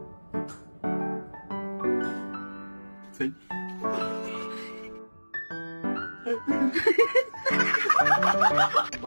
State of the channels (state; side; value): inverted; both; correlation -1.00